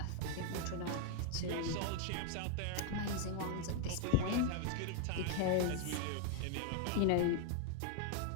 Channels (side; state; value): both; different; correlation 0.00